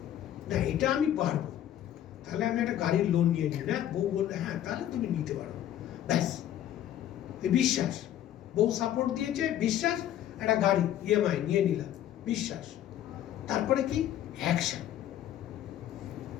না, এটা আমি পারবো, তাহলে আমি একটা গাড়ির লোন নিয়ে নিই, না বউ বললে হ্যাঁ তাহলে তুমি নিতে পারো, ব্যাস। বিশ্বাস, বউ সাপোর্ট দিয়েছে, বিশ্বাস, একটা গাড়ি ইএমআই নিয়ে নিলাম, বিশ্বাস। তারপরে কি? অ্যাকশন।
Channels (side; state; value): right; quieter; 11.6 dB